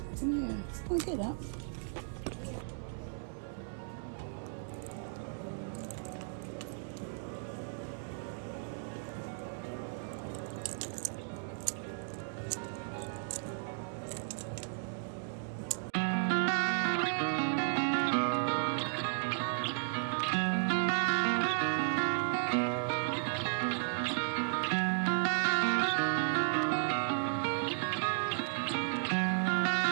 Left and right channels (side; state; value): left; silent; digital silence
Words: Yeah, I'll get that.